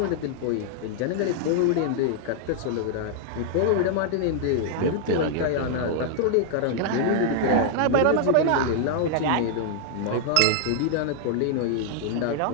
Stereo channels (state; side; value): different; both; correlation 0.00